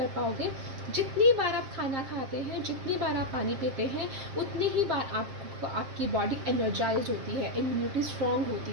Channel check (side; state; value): left; late; 7.5 ms